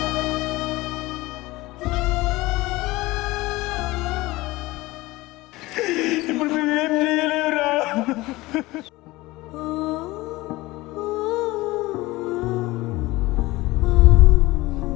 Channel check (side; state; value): right; quieter; 20.0 dB